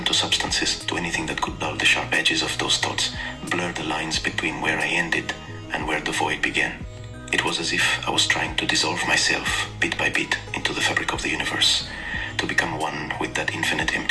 to substances, to anything that could dull the sharp edges of those thoughts, blur the lines between where I ended and where the void began. It was as if I was trying to dissolve myself, bit by bit, into the fabric of the universe, to become one with that infinite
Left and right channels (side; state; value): both; identical; correlation 1.00